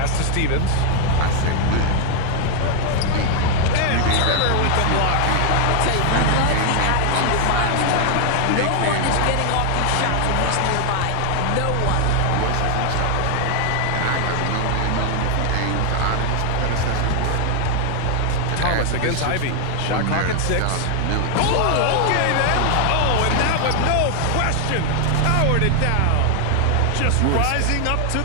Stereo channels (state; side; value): different; both; correlation 0.00